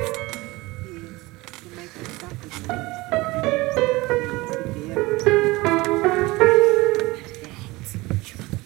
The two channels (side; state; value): left; quieter; 21.5 dB